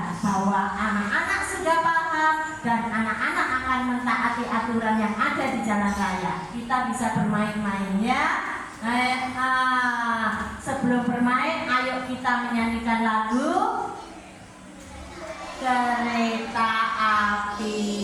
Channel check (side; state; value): both; identical; correlation 1.00